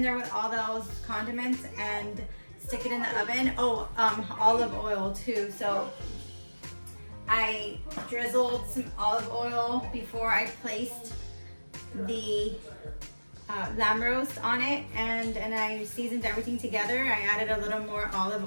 there with all those condiments, and stick it in the oven. Oh, olive oil too. So I drizzled some olive oil before I placed the lamb roast on it, and I seasoned everything together. I added a little more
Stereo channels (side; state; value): both; inverted; correlation -1.00